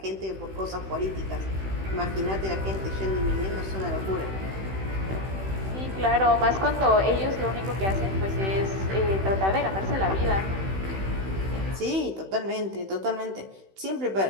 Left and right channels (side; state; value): left; late; 16 ms